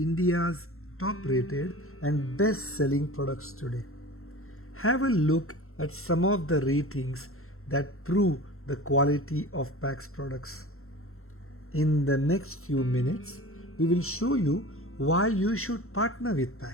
top rated and best selling products today. Have a look at some of the ratings that prove the quality of Pax products. In the next few minutes, we will show you why you should partner with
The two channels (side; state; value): right; late; 0.62 ms